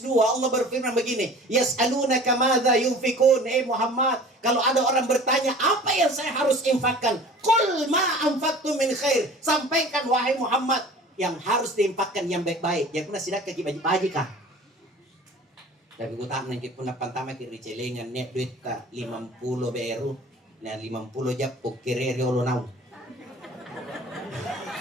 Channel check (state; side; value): normal; both; correlation 0.44